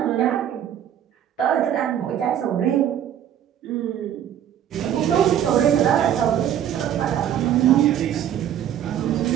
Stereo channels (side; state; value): left; quieter; 10.3 dB